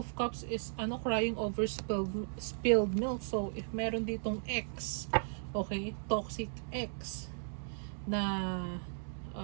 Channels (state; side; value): silent; left; digital silence